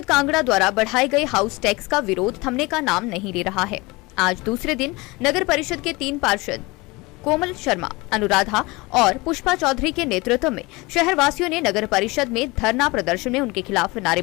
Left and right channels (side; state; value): right; quieter; 23.7 dB